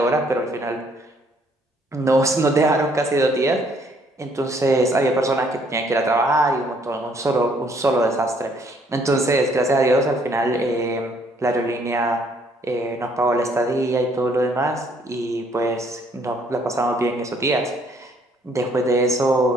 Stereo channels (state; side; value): normal; both; correlation 0.65